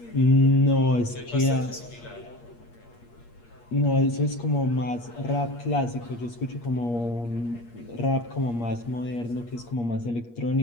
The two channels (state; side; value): late; right; 8.5 ms